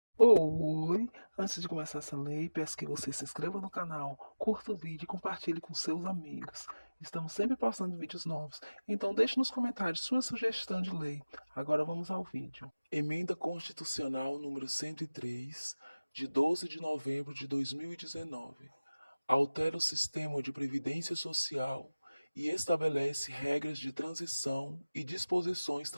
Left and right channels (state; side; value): inverted; both; correlation -0.99